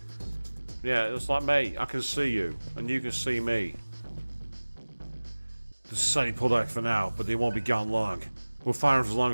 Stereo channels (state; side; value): inverted; both; correlation -1.00